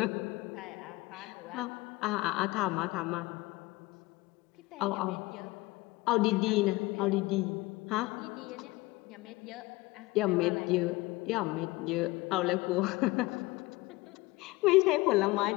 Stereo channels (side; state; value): right; quieter; 21.0 dB